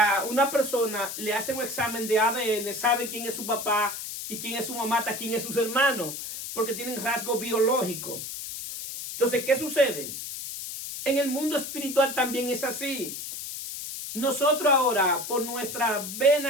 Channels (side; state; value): left; noise; hiss, 7 dB below the sound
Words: una persona le hacen un examen de ADN, sabe quién es su papá y quién es su mamá, hasta quién es sus hermanos, porque tienen rasgos biológicos. Entonces, ¿qué sucede? En el mundo espiritual también es así. Nosotros ahora, por nuestras